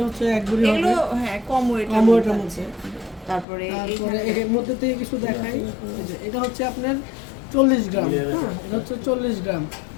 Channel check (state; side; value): drops out; right; at 3.5 s